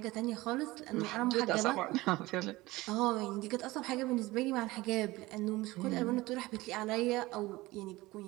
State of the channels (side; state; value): left; quieter; 19.7 dB